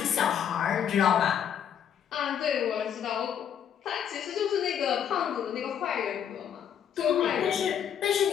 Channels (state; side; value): quieter; right; 8.8 dB